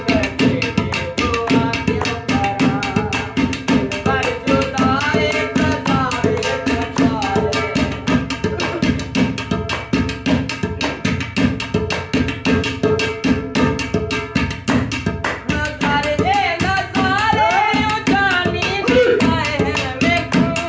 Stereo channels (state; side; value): identical; both; correlation 1.00